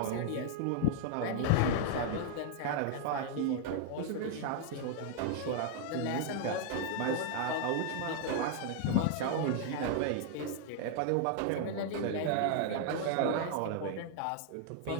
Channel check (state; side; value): different; both; correlation 0.00